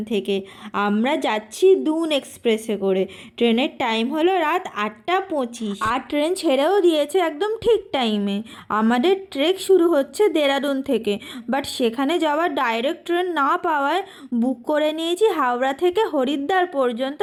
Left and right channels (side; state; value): both; identical; correlation 1.00